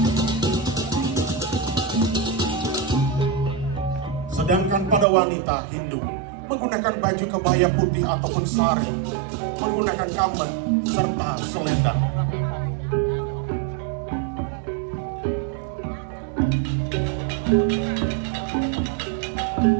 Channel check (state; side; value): drops out; left; at 5.1 s